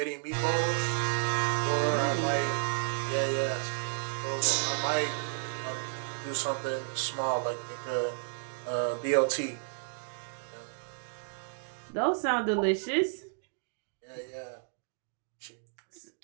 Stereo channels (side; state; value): left; silent; digital silence